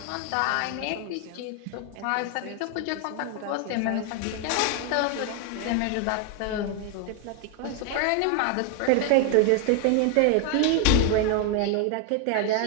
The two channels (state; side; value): different; both; correlation 0.00